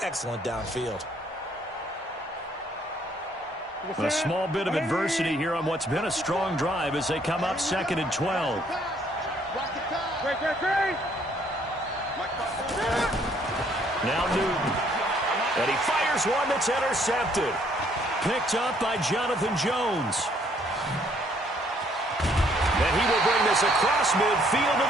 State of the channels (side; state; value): both; normal; correlation 0.65